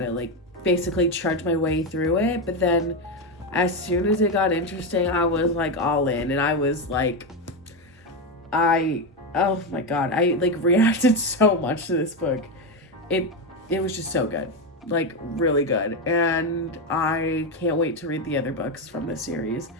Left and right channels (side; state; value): both; normal; correlation 0.10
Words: like, basically trudge my way through it. But then as soon as it got interesting, I was, like, all in, and I was, like, oh my god, I, like, reacted so much to this book. It was just so good. Like, really good. And I can't wait to read the other books from this series.